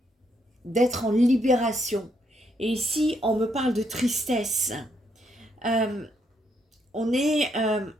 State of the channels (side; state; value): both; normal; correlation 0.75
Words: d'être en libération. Et ici, on me parle de tristesse. On